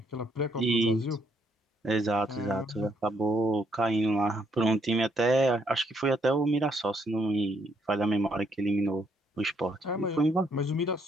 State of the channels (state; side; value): normal; both; correlation 0.72